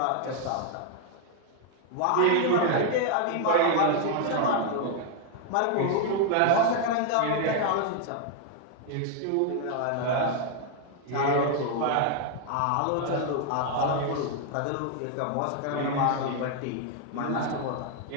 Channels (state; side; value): different; both; correlation 0.00